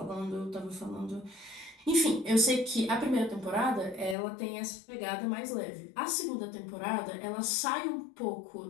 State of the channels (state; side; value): drops out; right; at 4.2 s